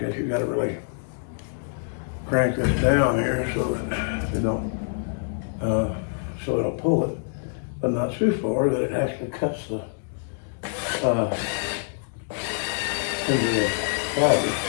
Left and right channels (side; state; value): right; silent; digital silence